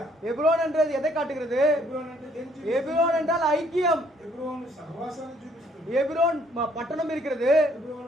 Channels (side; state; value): both; normal; correlation 0.65